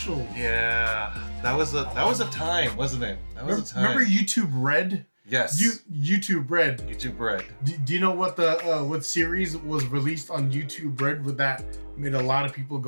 Yeah, that was a time, wasn't it? That was a time. Remember YouTube Red? Yes. YouTube Red. YouTube Red. Do you know what what series was released on YouTube Red that made a lot of people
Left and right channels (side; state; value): both; inverted; correlation -1.00